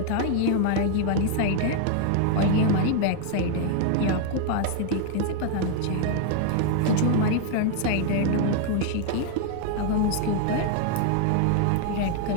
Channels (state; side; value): different; both; correlation 0.00